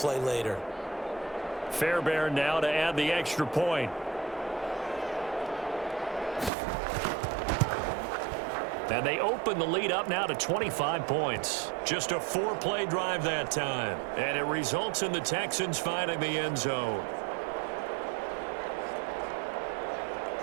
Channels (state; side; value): drops out; left; at 6.5 s